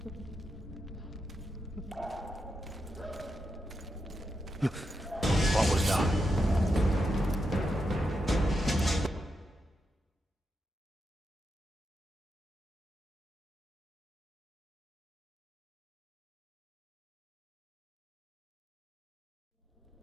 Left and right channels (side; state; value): both; normal; correlation 0.86